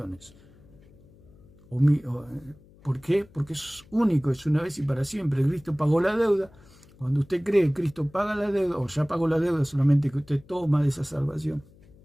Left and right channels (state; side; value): noise; left; hum, 26 dB below the sound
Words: ¿Por qué? Porque eso es único, es una vez y para siempre. Cristo pagó la deuda. Cuando usted cree que Cristo paga la deuda, o ya pagó la deuda, solamente que usted toma de esa salvación.